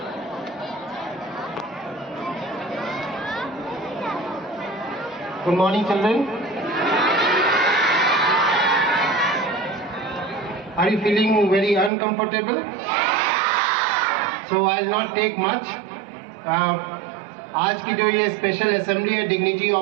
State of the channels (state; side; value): drops out; left; at 11.9 s